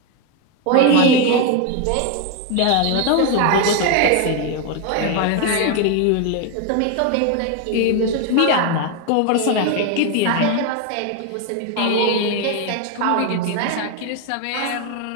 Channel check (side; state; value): both; different; correlation 0.01